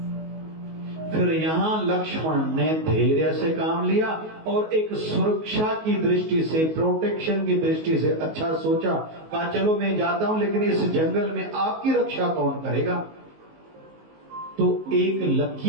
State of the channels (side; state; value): left; late; 19 ms